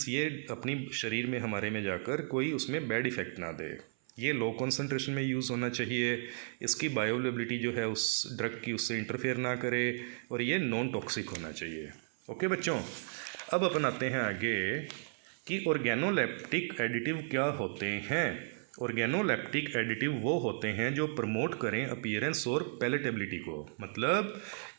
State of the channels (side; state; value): left; silent; 55 dB below the other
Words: ये अपनी शरीर में हमारे में जाकर कोई उसमें बैड इफ़ेक्ट ना दे। ये लो कंसंट्रेशन में यूज़ होना चाहिए, इसकी बायोअवेलेबिलिटी जो है उस ड्रग की उससे इंटरफेयर ना करे और ये नॉन टॉक्सिक होना चाहिए। ओके बच्चों, अब अपन आते हैं आगे कि ऑर्गेनोलेप्टिक एडिटिव क्या होते हैं। ऑर्गेनोलेप्टिक एडिटिव वो होते हैं जो प्रमोट करें अपीयरेंस और पैलेटेबिलिटी को, मतलब